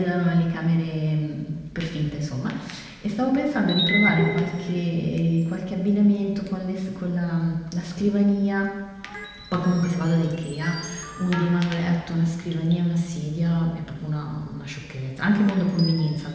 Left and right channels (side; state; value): both; identical; correlation 1.00